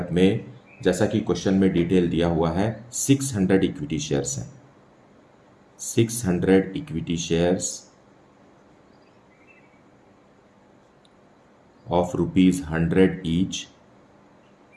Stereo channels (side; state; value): both; identical; correlation 1.00